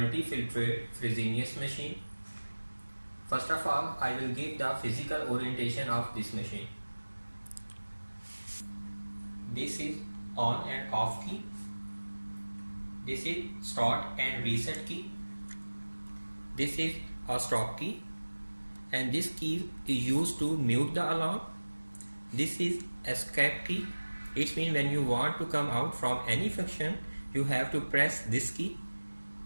Fresenius machine. First of all, I will give the physical orientation of this machine. This is on and off key. This is start and reset key. This is a stop key, and this key is used to mute the alarm. This is escape key. It means when you want to come out from any function, you have to press this key.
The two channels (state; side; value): inverted; both; correlation -1.00